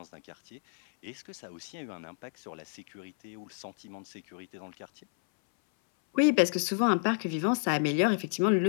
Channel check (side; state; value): right; silent; 57 dB below the other